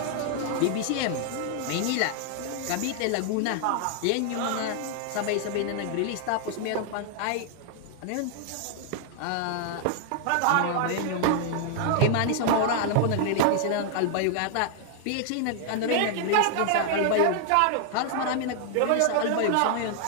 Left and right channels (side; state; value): both; different; correlation 0.00